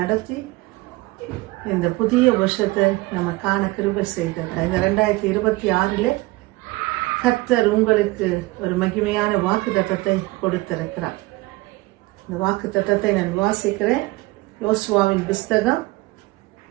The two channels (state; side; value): quieter; left; 21.1 dB